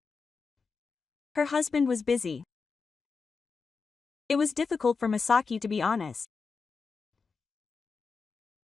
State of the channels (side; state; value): right; quieter; 5.0 dB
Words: Her husband was busy. It was difficult for Masaki to be honest.